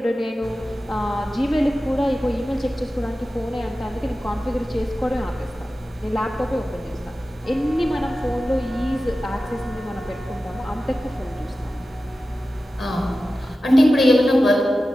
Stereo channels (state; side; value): normal; both; correlation 0.94